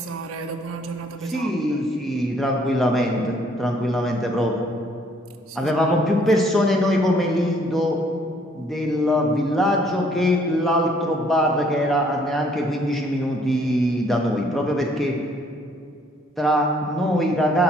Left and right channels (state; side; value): normal; both; correlation 0.63